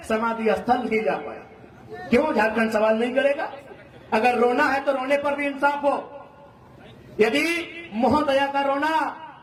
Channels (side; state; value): both; identical; correlation 1.00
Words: समाधि स्थल नहीं जा पाया। क्यों झारखंड सवाल नहीं करेगा? अगर रोना है तो रोने पर भी इंसाफ हो। यदि महोदया का रोना